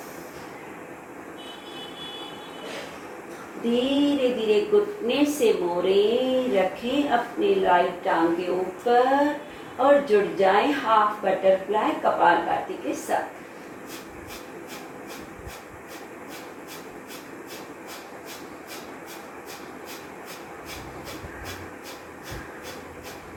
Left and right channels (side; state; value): both; identical; correlation 1.00